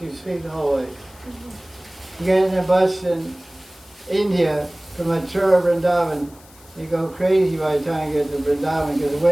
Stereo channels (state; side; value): noise; left; hiss, 25 dB below the sound